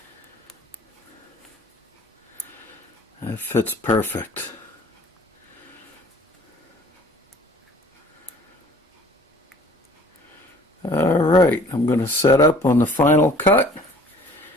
That fits perfect. Alright, I'm going to set up on the final cut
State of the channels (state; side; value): normal; both; correlation 0.51